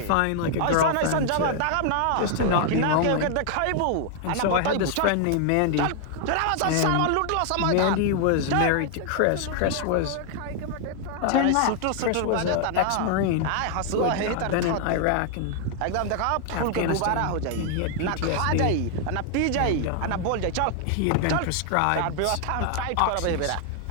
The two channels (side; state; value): both; different; correlation 0.00